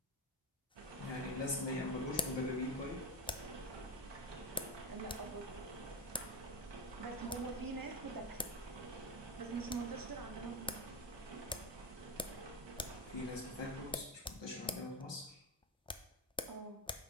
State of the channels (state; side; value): normal; both; correlation 0.15